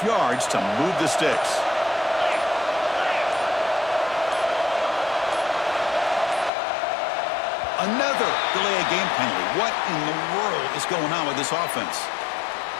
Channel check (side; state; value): right; drops out; at 6.5 s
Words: yards to move the sticks. Another delay of game penalty. What in the world is going on with this offense?